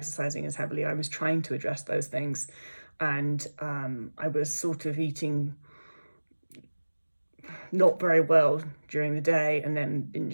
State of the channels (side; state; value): both; inverted; correlation -1.00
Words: as heavily. I was trying to address those things, and I was sort of eating not very well during the day and then